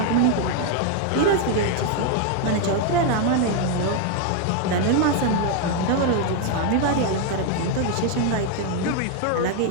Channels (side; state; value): both; different; correlation 0.01